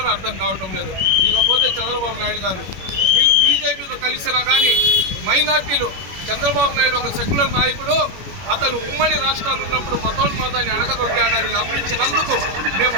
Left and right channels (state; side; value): late; left; 21 ms